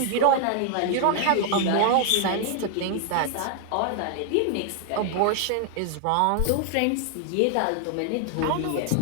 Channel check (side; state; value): both; different; correlation 0.00